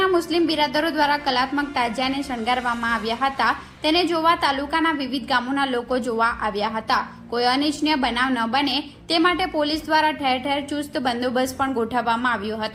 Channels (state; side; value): identical; both; correlation 1.00